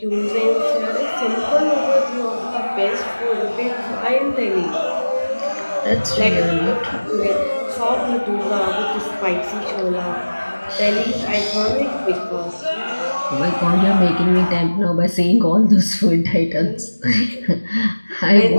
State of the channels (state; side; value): inverted; both; correlation -1.00